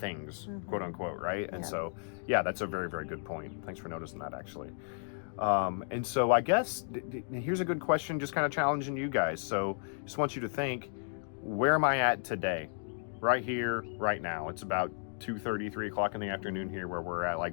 quote unquote, right? And so, that's a very, very good point. Thanks for noticing that, actually. And so I guess here's a good question, just kind of challenging you guys. So just want you to think, where am I at today? Right here, right now. It's about 2:30, 3 o'clock in the afternoon here where we're at.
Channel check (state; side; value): silent; right; digital silence